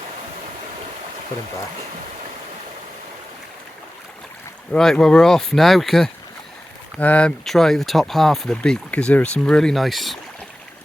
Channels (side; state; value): both; normal; correlation 0.95